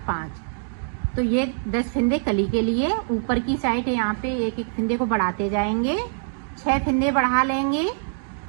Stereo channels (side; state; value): left; silent; digital silence